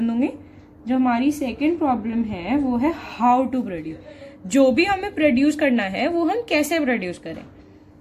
दूंगी. जो हमारी सेकेंड प्रॉब्लम है वो है हाउ टू प्रोड्यूस, जो भी हमें प्रोड्यूस करना है वो हम कैसे प्रोड्यूस करें.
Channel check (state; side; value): identical; both; correlation 1.00